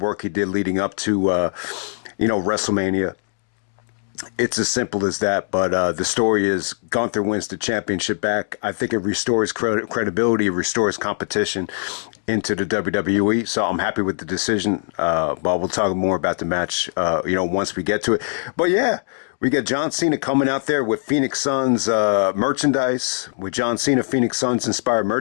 he did leading up to WrestleMania. It's as simple as that, but the story is Gunther wins the championship back. I think it restores credibility, it restores competition into the WWE, so I'm happy with the decision, but we'll talk more about the match, once we get to it. But yeah, we get John Cena coming out there with Phoenix Suns merchandise, with John Cena Phoenix Suns inspired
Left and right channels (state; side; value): silent; right; digital silence